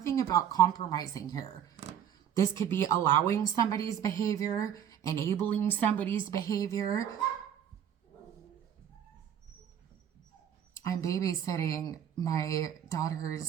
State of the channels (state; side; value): quieter; left; 9.3 dB